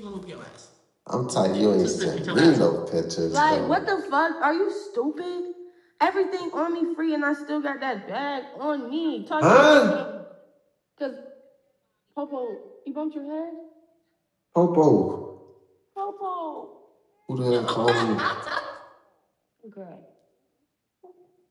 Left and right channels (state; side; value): identical; both; correlation 1.00